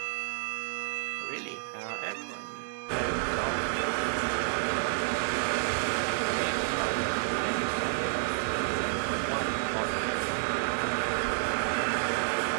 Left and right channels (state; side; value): silent; left; digital silence